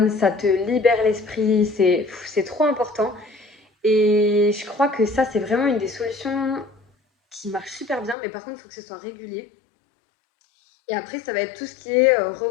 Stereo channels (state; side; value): drops out; right; at 8.2 s